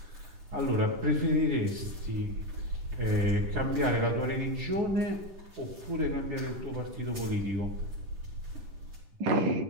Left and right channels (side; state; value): left; late; 10 ms